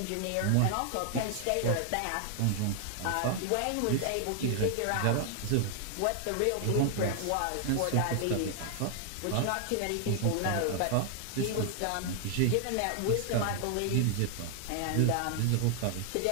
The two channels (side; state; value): both; different; correlation 0.00